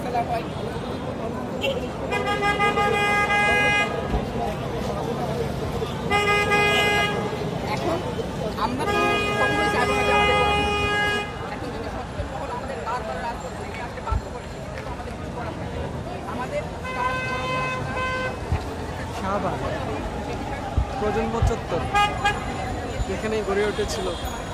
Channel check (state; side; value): identical; both; correlation 1.00